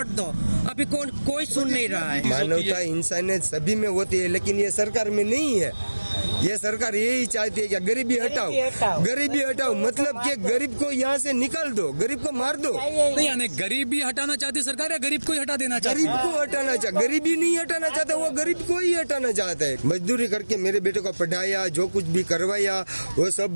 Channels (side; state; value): both; inverted; correlation -1.00